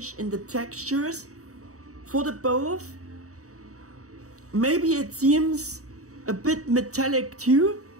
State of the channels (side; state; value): left; late; 0.65 ms